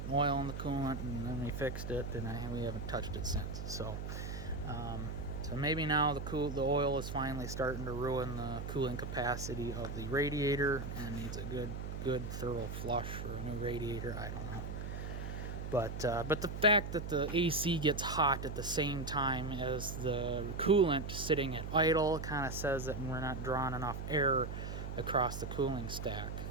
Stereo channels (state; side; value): noise; right; hum, 5 dB below the sound